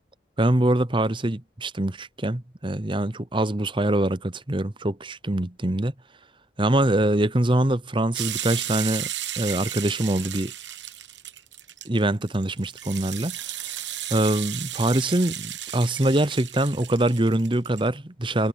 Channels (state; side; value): normal; both; correlation 0.73